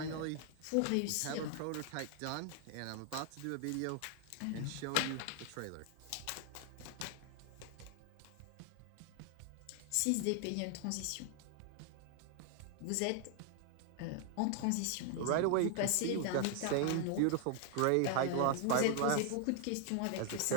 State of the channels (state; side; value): different; both; correlation 0.00